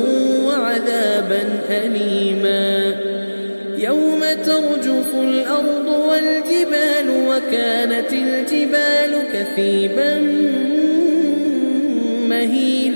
وعذابا أليما يوم ترجف الأرض والجبال وكانت الجبال كثيبا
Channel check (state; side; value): inverted; both; correlation -1.00